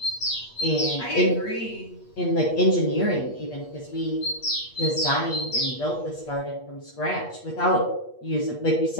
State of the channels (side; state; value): right; late; 8.4 ms